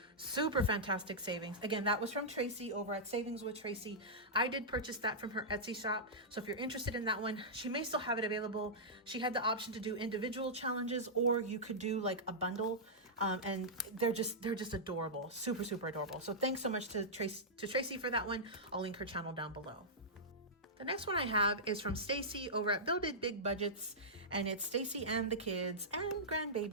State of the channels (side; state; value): both; normal; correlation -0.12